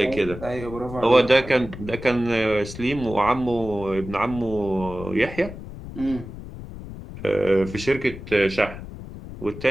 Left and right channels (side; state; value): left; noise; rumble, 12 dB below the sound